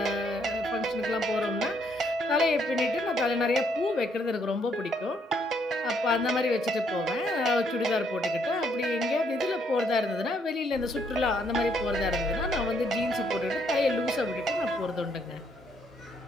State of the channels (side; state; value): both; normal; correlation 0.71